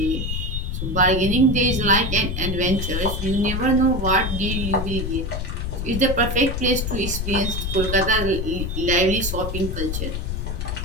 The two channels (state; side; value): noise; left; rumble, 3 dB below the sound